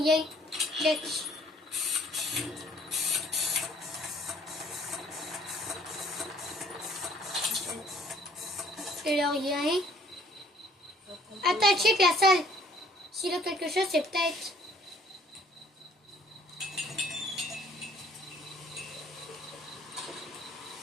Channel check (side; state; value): both; normal; correlation 0.59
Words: Check. Il a rien. Attends, check la salle. S'il a quelque chose, c'est peut-être...